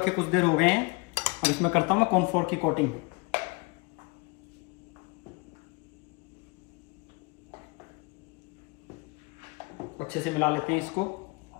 कुछ देर हो गए हैं। अब इसमें करता हूं मैं कॉर्नफ्लोर की कोटिंग। अच्छे से मिला लेते हैं इसको।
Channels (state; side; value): quieter; right; 27.0 dB